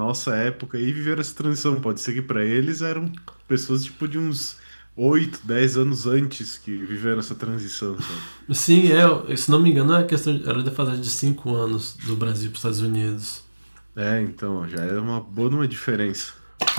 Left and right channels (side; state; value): both; inverted; correlation -1.00